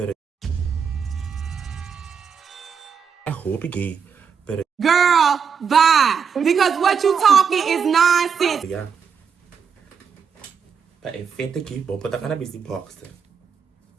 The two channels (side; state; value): left; quieter; 6.6 dB